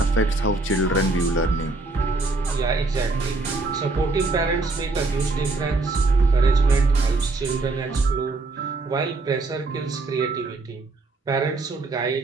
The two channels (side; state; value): left; quieter; 3.3 dB